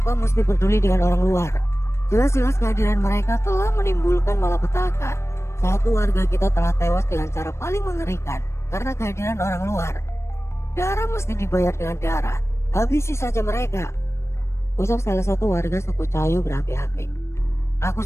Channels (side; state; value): right; late; 0.13 ms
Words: mesti peduli dengan orang luar? Jelas-jelas kehadiran mereka telah menimbulkan malapetaka. Satu warga kita telah tewas dengan cara paling mengerikan karena kehadiran orang luar. Darah mesti dibayar dengan darah. Habisi saja mereka, ucap salah satu warga suku Cahayu berapi-api. Aku